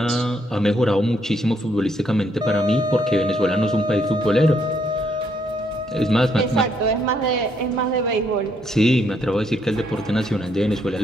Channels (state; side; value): normal; both; correlation 0.72